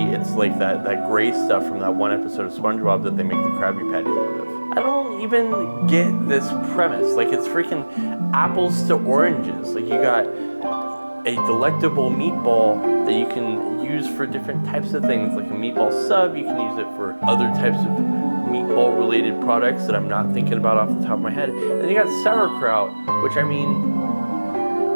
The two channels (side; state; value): both; inverted; correlation -1.00